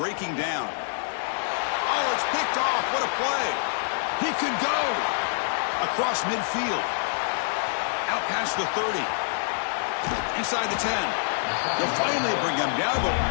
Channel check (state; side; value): silent; right; digital silence